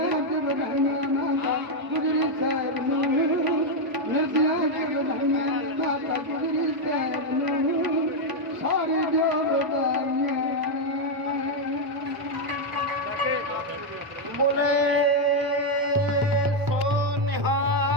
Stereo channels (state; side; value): late; left; 1.0 ms